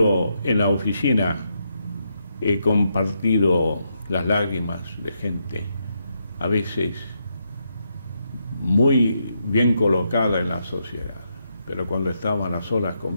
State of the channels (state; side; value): inverted; both; correlation -0.81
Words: en la oficina he compartido las lágrimas de gente, a veces muy bien colocada en la sociedad, pero cuando estaban a solas